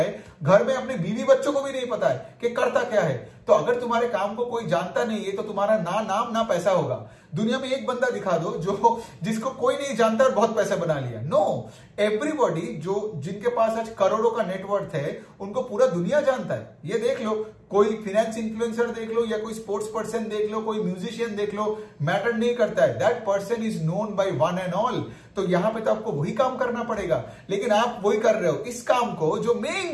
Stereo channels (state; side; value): identical; both; correlation 1.00